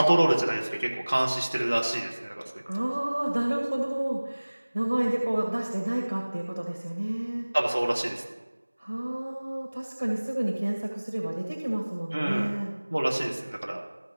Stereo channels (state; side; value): inverted; both; correlation -1.00